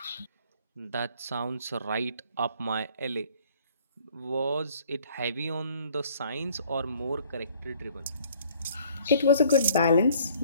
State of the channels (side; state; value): both; inverted; correlation -0.57